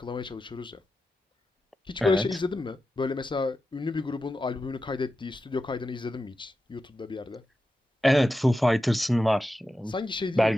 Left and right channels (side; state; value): both; normal; correlation 0.91